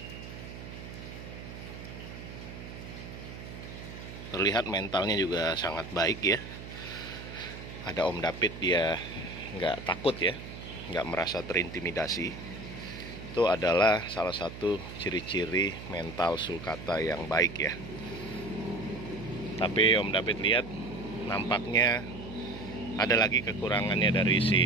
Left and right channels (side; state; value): right; noise; hum, 11 dB below the sound